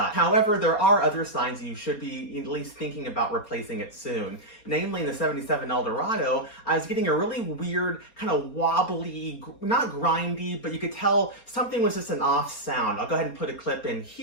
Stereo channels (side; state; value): right; late; 4.3 ms